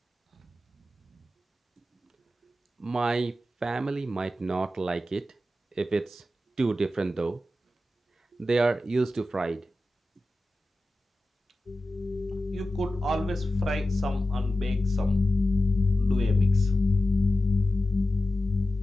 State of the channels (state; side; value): normal; both; correlation 0.93